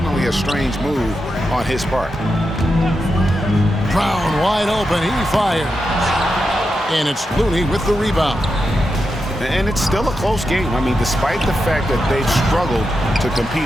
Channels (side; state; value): both; normal; correlation 0.87